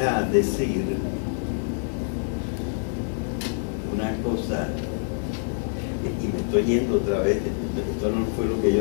decir una cosa, y me estoy yendo otra vez, esto no fue lo que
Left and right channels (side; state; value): right; silent; digital silence